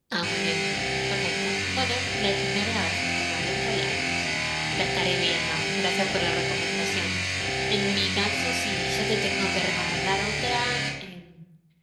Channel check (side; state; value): both; identical; correlation 1.00